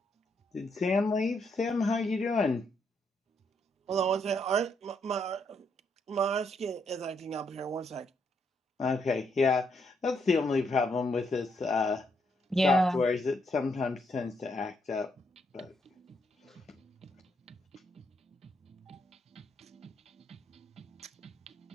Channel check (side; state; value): both; normal; correlation 0.75